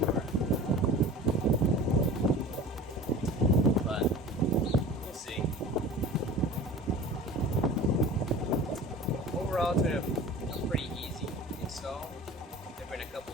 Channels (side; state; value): both; normal; correlation 0.39